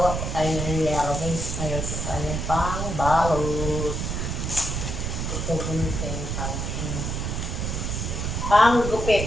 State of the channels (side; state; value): right; noise; rumble, 2 dB below the sound